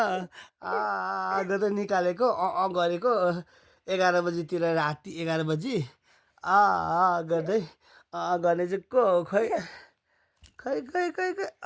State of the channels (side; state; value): both; identical; correlation 1.00